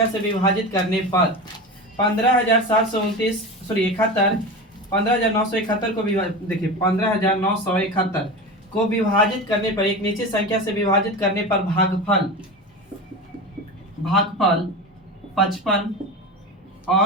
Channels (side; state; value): both; normal; correlation 0.27